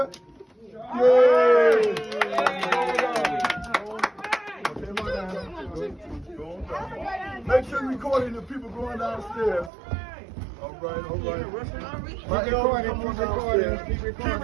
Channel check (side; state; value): left; drops out; at 9.7 s